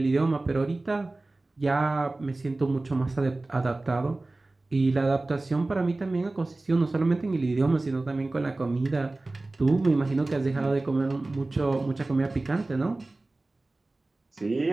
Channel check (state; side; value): quieter; left; 3.0 dB